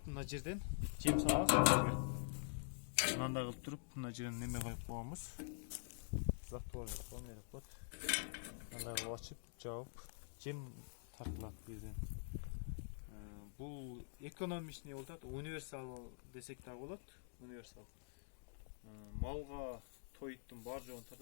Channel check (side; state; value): right; silent; digital silence